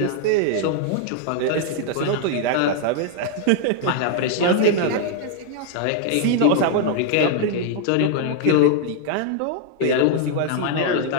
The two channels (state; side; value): different; both; correlation 0.00